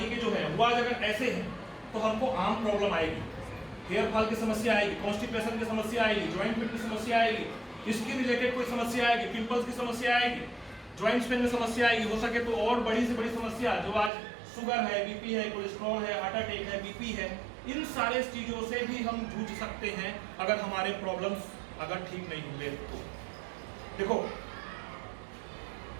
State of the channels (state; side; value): drops out; left; at 14.1 s